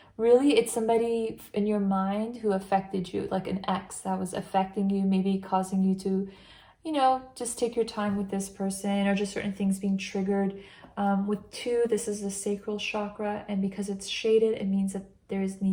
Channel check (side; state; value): both; identical; correlation 1.00